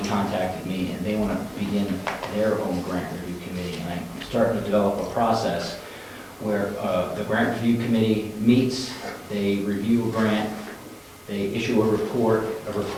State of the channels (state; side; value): identical; both; correlation 1.00